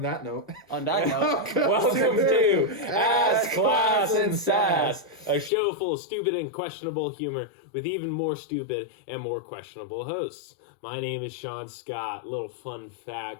that note. Welcome to Ass, Class, and Sass, a show full of stupid and questionable humor with even more stupid and more questionable hosts. My name is Sean Scott. Little fun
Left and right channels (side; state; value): right; drops out; at 5.5 s